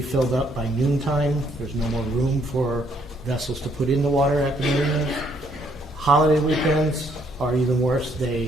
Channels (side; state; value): both; normal; correlation 0.68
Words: filled up by noontime. There's no more room for vessels to put in the water at the marinas. Holiday weekends are even worse.